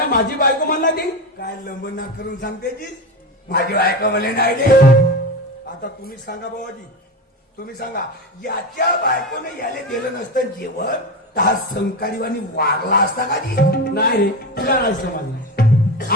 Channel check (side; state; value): both; normal; correlation 0.21